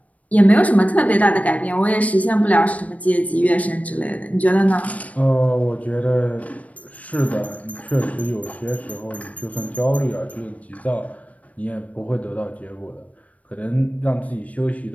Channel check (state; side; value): late; right; 0.068 ms